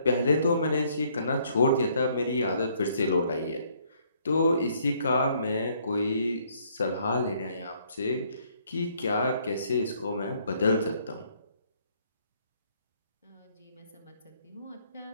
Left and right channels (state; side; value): inverted; both; correlation -0.66